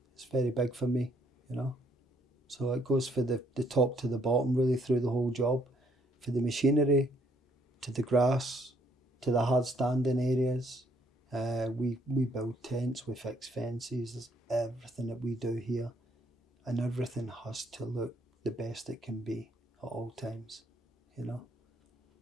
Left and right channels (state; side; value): normal; both; correlation 0.68